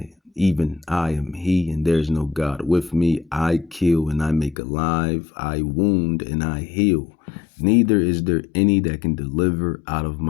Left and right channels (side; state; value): right; drops out; at 4.5 s